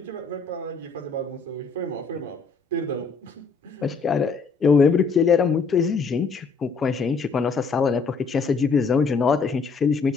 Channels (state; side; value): quieter; right; 4.8 dB